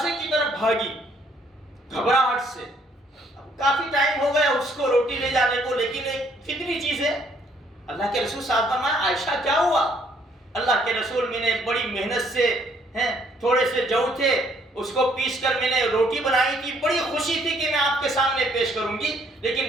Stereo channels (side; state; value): both; normal; correlation 0.65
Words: کی طرف بھاگی گھبراہٹ سے۔ کافی ٹائم ہو گیا اس کو روٹی لے جانے کو، لیکن ایک فطری چیز ہے۔ اللہ کے رسول صاحب فرمایا عائشہ کیا ہوا؟ اللہ کے رسول میں نے بڑی محنت سے تھوڑے سے جو تھے اس کو پیس کر میں نے روٹی بنائی تھی، بڑی خوشی تھی کہ میں آپ کے سامنے پیش کروں گی،